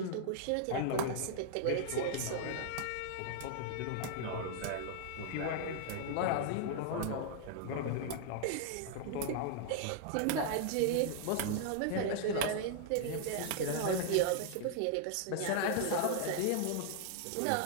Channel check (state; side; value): different; both; correlation -0.01